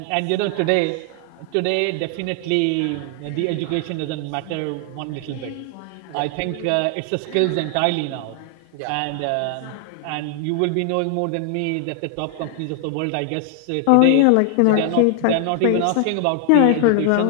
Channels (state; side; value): different; both; correlation 0.00